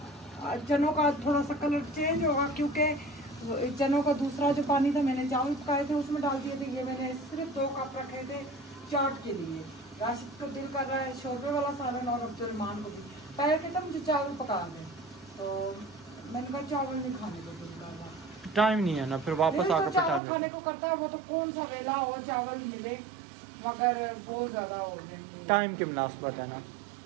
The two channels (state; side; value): drops out; left; at 20.2 s